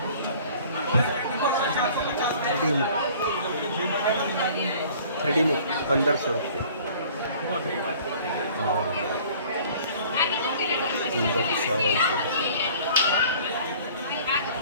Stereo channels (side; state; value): both; inverted; correlation -0.50